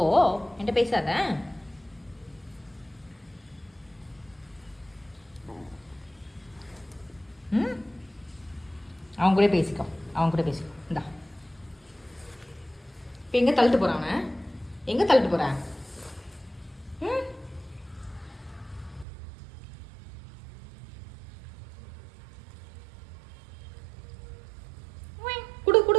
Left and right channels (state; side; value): drops out; left; at 19.1 s